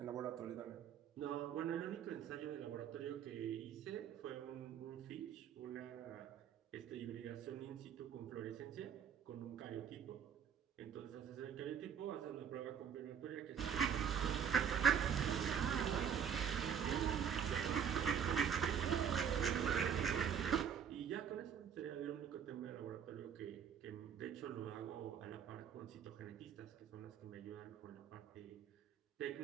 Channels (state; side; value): quieter; left; 8.0 dB